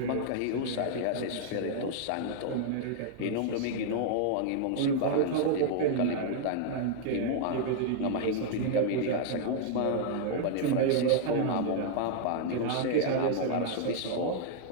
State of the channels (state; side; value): different; both; correlation -0.01